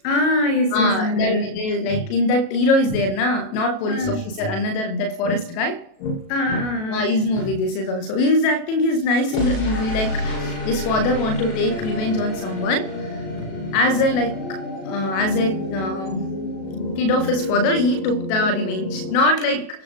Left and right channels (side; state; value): right; late; 37 ms